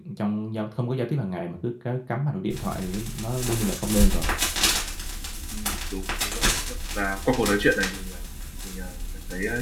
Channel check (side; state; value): both; identical; correlation 1.00